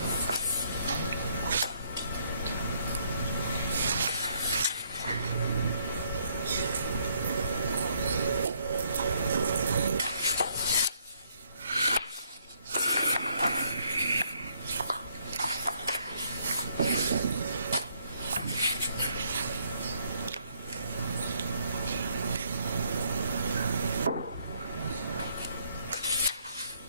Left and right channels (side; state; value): both; inverted; correlation -0.69